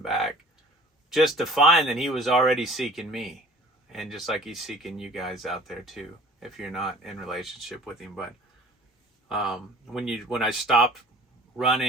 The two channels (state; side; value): normal; both; correlation 0.48